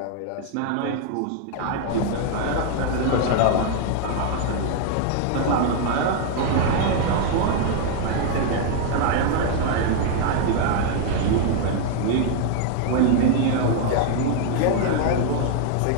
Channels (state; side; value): different; both; correlation 0.00